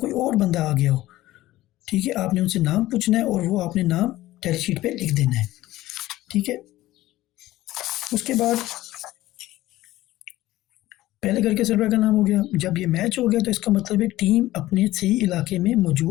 और बंदा आ गया हो, ठीक है। आपने उनसे नाम पूछना है और वो आपने नाम टैली शीट पे लिख देना है, ठीक है। उसके बाद पहले घर के सर्वर का नाम हो गया। जब ये मैच हो गया तो इसका मतलब है टीम अपने सही इलाके में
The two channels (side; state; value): right; quieter; 16.2 dB